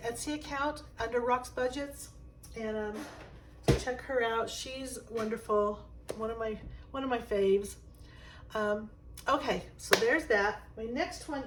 account under Rock's Budgets, and so check her out. She's wonderful. One of my faves. Okay, so there's that. My next one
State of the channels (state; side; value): identical; both; correlation 1.00